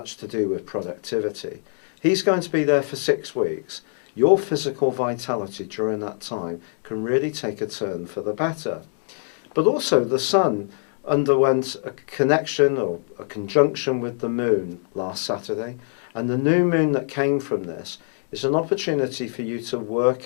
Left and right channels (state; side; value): silent; right; 63 dB below the other